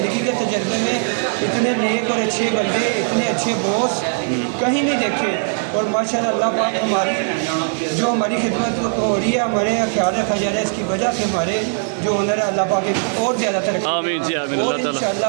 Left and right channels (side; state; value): left; silent; 66 dB below the other